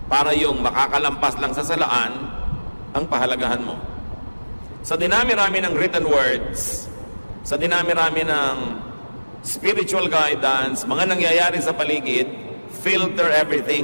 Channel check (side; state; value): both; inverted; correlation -1.00